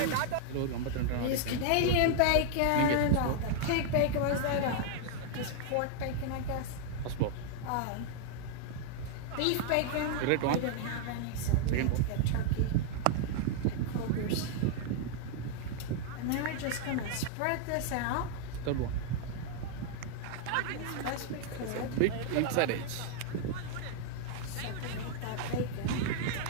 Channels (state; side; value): different; both; correlation 0.00